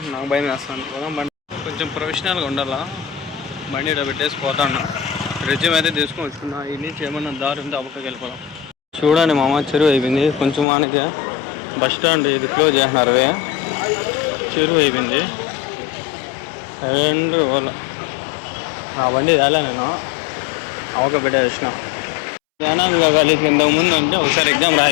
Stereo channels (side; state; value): right; drops out; at 10.7 s